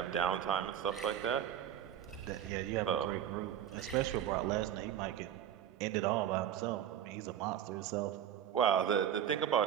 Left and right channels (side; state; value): left; quieter; 10.0 dB